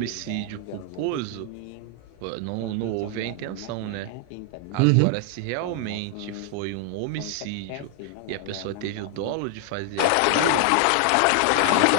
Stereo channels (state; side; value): different; both; correlation 0.00